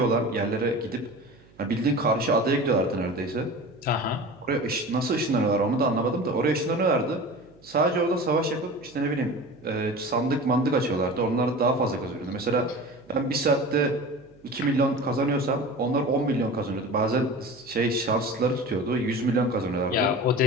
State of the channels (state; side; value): noise; right; hum, 28 dB below the sound